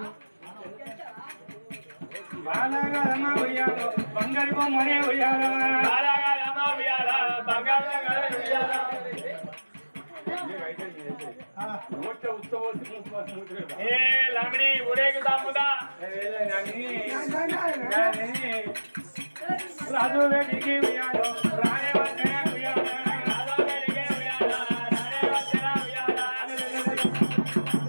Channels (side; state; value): both; inverted; correlation -1.00